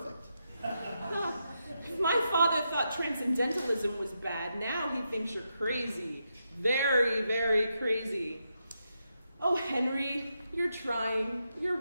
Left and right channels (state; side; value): inverted; both; correlation -0.84